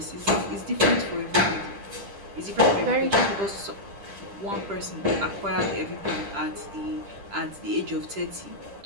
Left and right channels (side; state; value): left; late; 10 ms